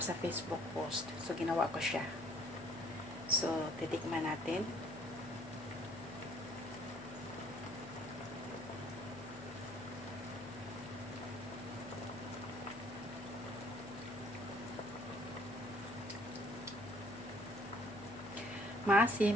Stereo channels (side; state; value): left; noise; hum, 20 dB below the sound